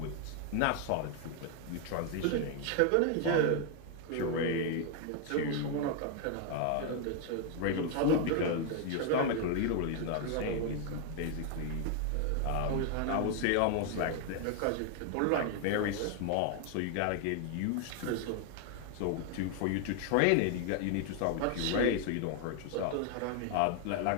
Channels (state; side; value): different; both; correlation 0.00